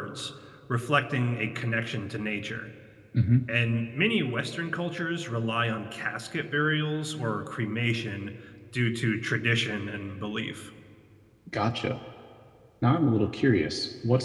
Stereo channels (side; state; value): both; identical; correlation 1.00